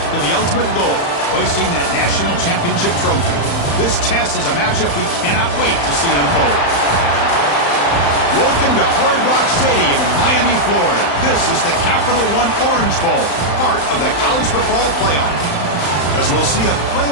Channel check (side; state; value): right; late; 35 ms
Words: the ultimate goal, hoisting that national championship trophy. This test is a matchup we cannot wait to see unfold. Welcome to Hard Rock Stadium in Miami, Florida. This is the Capital One Orange Bowl, part of the college football playoff. As we'll see a